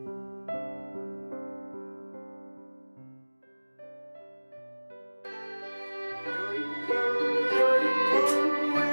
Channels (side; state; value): both; inverted; correlation -1.00